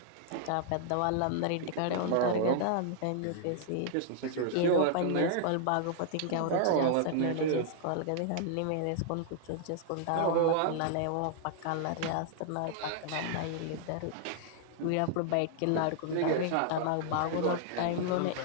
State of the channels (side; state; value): both; different; correlation -0.01